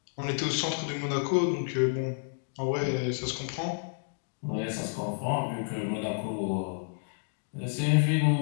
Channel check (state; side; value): silent; right; digital silence